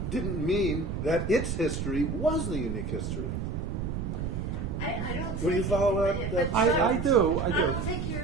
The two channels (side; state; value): right; noise; rumble, 3 dB below the sound